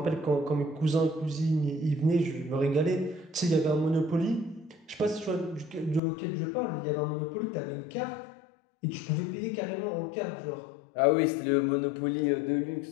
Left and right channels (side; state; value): right; drops out; at 6.0 s